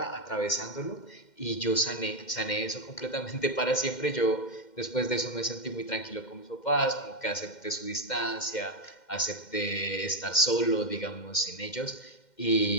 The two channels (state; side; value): late; right; 2.1 ms